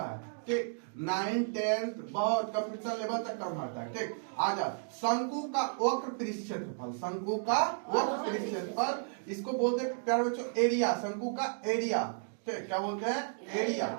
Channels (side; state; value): left; silent; digital silence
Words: ठीक, 9, 10 बहुत कंपटीशन लेवल तक काम आता है। ठीक, आजा शंकु का वक्र पृष्ठ क्षेत्रफल, शंकु का वक्र पृष्ठ क्षेत्रफल, इसको बोलते हैं प्यारे बच्चों एरिया, शंकु का एरिया। ठीक, क्या बोलते हैं? एरिया।